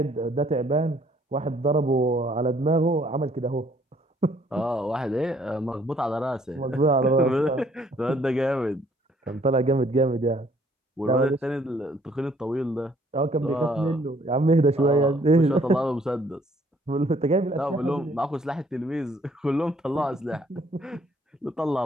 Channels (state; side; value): normal; both; correlation 0.63